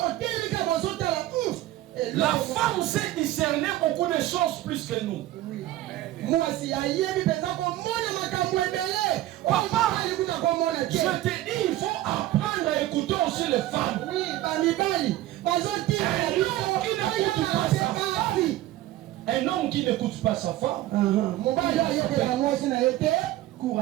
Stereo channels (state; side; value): quieter; left; 15.2 dB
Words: La femme sait discerner beaucoup de choses plus que nous. Papa, je te dis, il faut apprendre à écouter aussi les femmes. Un homme qui n'écoute pas sa femme court